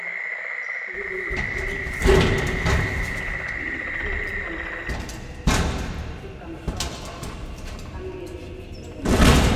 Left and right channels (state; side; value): identical; both; correlation 1.00